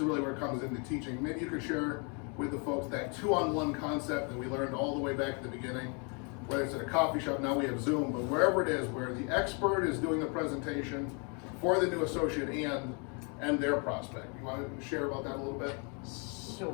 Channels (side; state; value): right; quieter; 35.6 dB